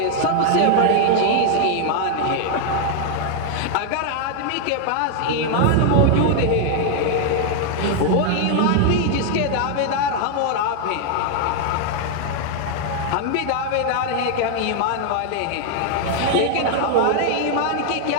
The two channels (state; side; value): different; both; correlation 0.00